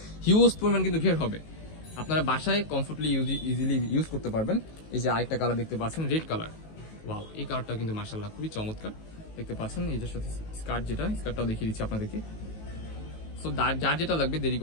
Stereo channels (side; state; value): right; late; 19 ms